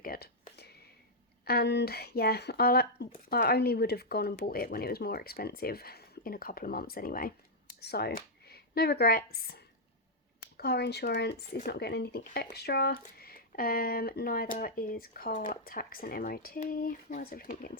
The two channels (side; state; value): both; normal; correlation -0.05